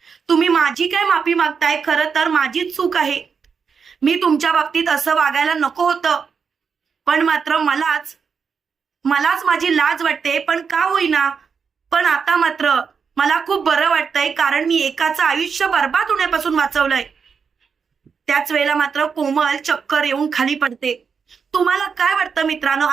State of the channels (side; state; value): left; quieter; 6.0 dB